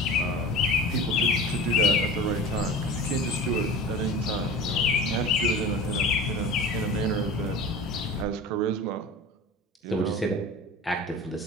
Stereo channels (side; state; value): both; normal; correlation 0.35